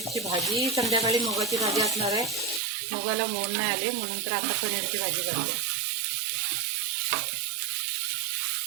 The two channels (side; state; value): left; drops out; at 2.6 s